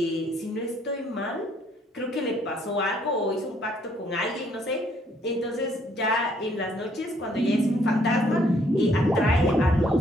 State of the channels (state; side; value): normal; both; correlation 0.66